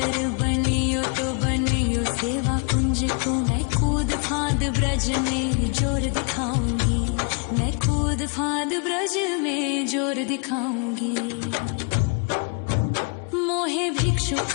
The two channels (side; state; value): right; quieter; 34.7 dB